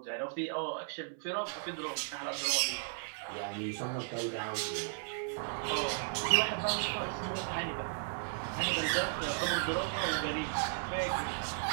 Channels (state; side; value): silent; left; 54 dB below the other